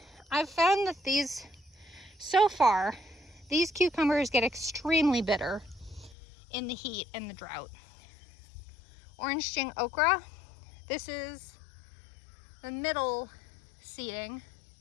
I've found that these, so far, these cucumbers get extremely bitter in the heat and the drought. Orange Jing okra, this is the middle seeding,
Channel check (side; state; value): right; drops out; at 6.2 s